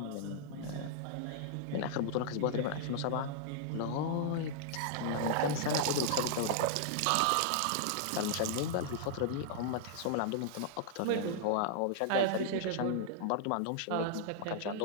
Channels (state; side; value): different; both; correlation -0.01